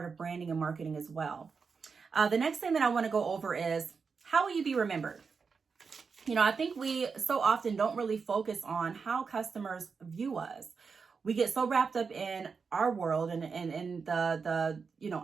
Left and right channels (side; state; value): left; quieter; 5.3 dB